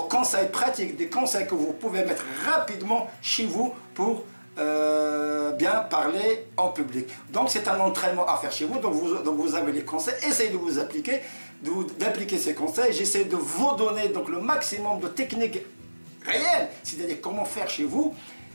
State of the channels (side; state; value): both; inverted; correlation -1.00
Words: conseils pratiques, des conseils que vous pouvez mettre rapidement chez vous pour bien parler en public. Donc, c'est un entraînement à faire chez vous. Donc, vous avez les conseils. Essayez de vous appliquer, d'appliquer ces conseils. J'essaie de vous donner donc le maximum de techniques réelles, c'est-à-dire comment faire chez vous.